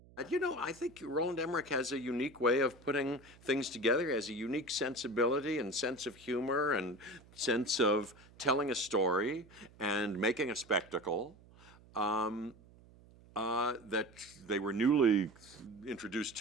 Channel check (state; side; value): noise; right; hum, 24 dB below the sound